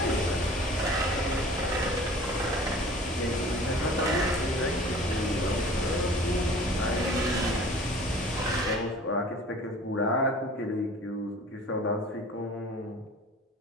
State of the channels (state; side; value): normal; both; correlation 0.46